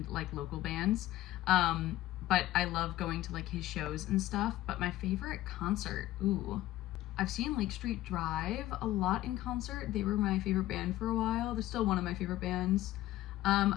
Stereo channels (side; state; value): right; quieter; 15.3 dB